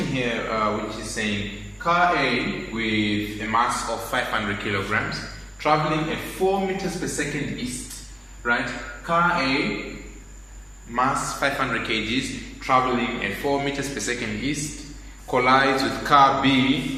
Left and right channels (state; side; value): identical; both; correlation 1.00